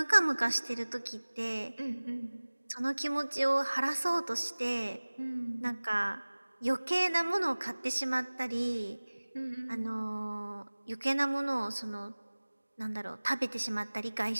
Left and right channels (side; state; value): both; inverted; correlation -1.00